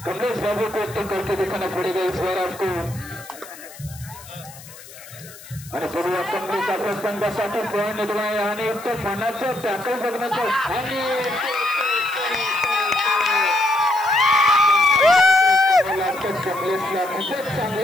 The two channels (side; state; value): left; noise; hiss, 18 dB below the sound